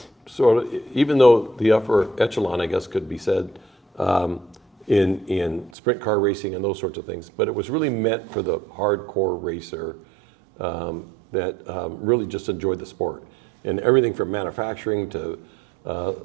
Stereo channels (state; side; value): drops out; left; at 5.7 s